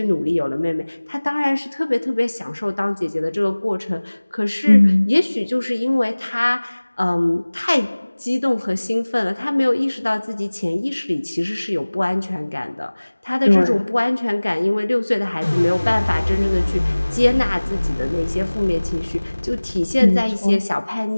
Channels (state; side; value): inverted; both; correlation -1.00